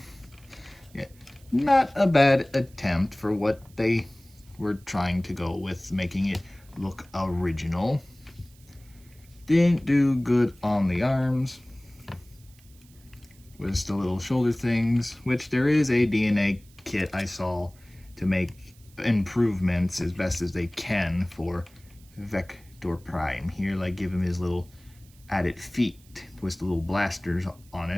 Yeah, not a bad attempt for what they were trying to go with, making it look original. Didn't do good on the arms. with the little shoulder things, which there is a DNA kit I saw to make improvements as best as they can for Vector Prime. Here, like, give him his little added feet with the little blasters on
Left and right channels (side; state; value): right; noise; hiss, 28 dB below the sound